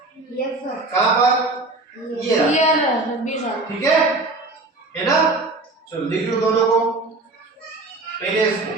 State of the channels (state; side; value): quieter; left; 3.1 dB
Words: Yes sir. कहां पर? ये रहा, 20 साल। ठीक है ना। चलो लिख लो दोनों को। पहले इसको